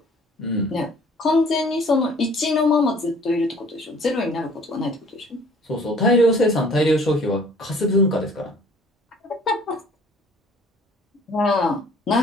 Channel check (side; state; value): both; normal; correlation 0.54